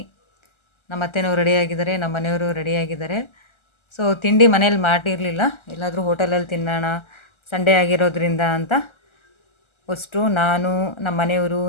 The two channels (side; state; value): right; late; 1.3 ms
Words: ನಮ್ಮ ಅತ್ತೆನವರು ರೆಡಿಯಾಗಿದ್ದಾರೆ, ನಮ್ಮ ಮನೆಯವರು ರೆಡಿಯಾಗಿದ್ದಾರೆ. ಸೊ ತಿಂಡಿ ಮನೇಲಿ ಮಾಡಿರಲಿಲ್ಲ, ಎಲ್ಲಾದರೂ ಹೋಟೆಲಲ್ಲಿ ತಿನ್ನೋಣ ಸಂಡೇ ಆಗಿರೋದ್ರಿಂದ ಅಂತ ಅಷ್ಟು ನಾನು, ನಮ್ಮ ಮನೆಯವರು,